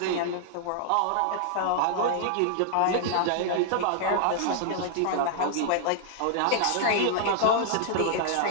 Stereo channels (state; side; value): different; both; correlation -0.01